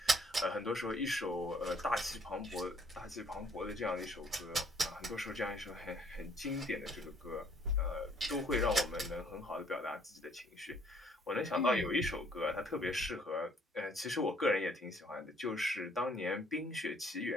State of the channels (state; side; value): normal; both; correlation 0.63